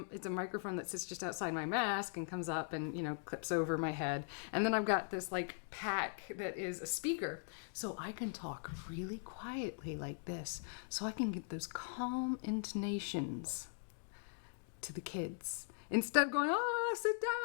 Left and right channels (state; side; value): silent; right; digital silence